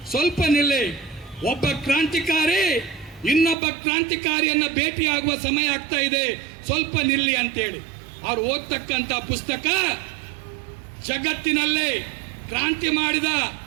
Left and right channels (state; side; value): drops out; left; at 3.6 s